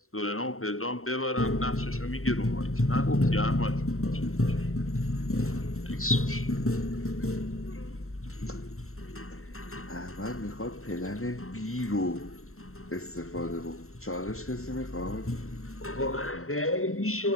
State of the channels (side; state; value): right; late; 0.62 ms